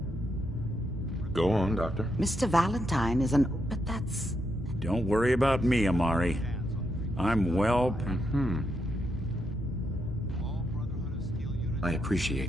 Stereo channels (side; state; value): both; normal; correlation 0.81